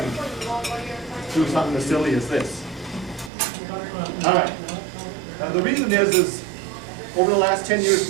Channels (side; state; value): left; drops out; at 3.3 s